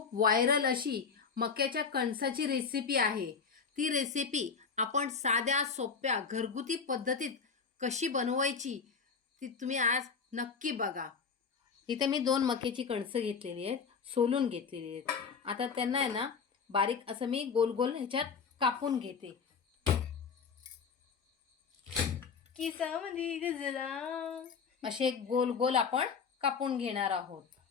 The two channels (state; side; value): quieter; right; 5.7 dB